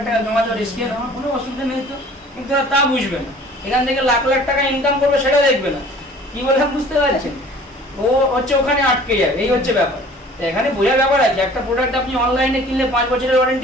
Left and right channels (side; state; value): both; normal; correlation 0.49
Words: টাকা জমা দেওয়ার রিস্ক, আমার কোনো অসুবিধা নেই তো। কিন্তু তা বুঝবে না, এখান থেকে লাখ লাখ টাকা ইনকাম করবে সেটা দেখবে না। কি বললাম বুঝতে পারছেন? ও হচ্ছে ওখানে আটকে যাবে, এই হচ্ছে ব্যাপার। এখানে বোঝার ব্যাপার আছে, একটা প্রোডাক্ট আপনি অনলাইনে কিনলে 5 বছরের